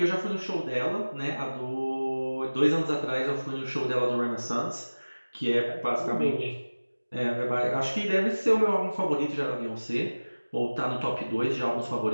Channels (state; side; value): inverted; both; correlation -1.00